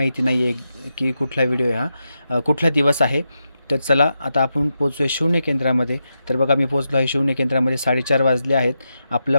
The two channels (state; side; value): inverted; both; correlation -0.87